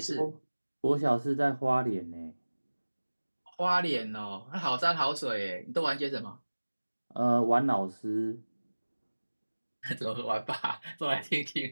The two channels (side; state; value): both; inverted; correlation -1.00